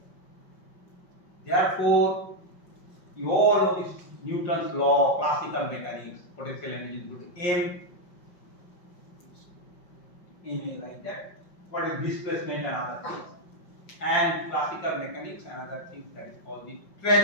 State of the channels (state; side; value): late; right; 5.6 ms